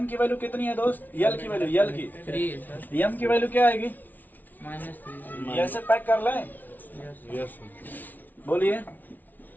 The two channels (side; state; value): right; late; 0.082 ms